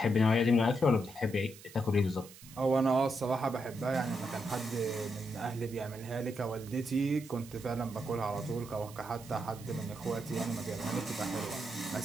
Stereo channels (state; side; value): noise; right; hiss, 19 dB below the sound